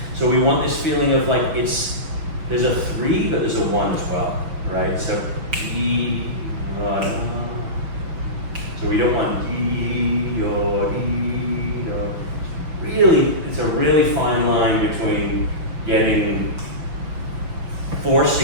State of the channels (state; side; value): late; left; 6.0 ms